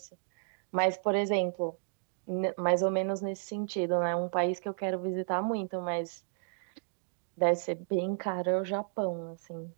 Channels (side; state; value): left; silent; digital silence